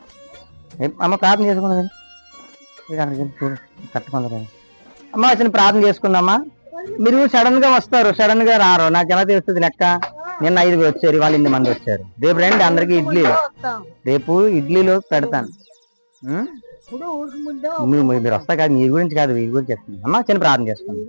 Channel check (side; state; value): both; inverted; correlation -1.00